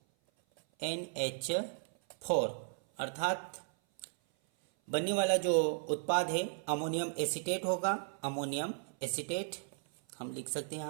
अर्थात बनने वाला जो उत्पाद है अमोनियम एसीटेट होगा। अमोनियम एसीटेट हम लिख सकते हैं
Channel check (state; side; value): silent; left; 54 dB below the other